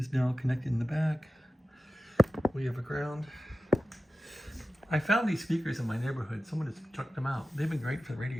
now connected in the back. We have a ground. I found these speakers in my neighborhood. Someone just chucked them out. They've been great for the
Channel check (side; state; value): both; normal; correlation 0.94